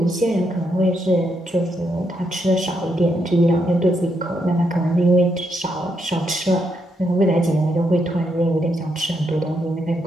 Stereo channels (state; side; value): normal; both; correlation 0.79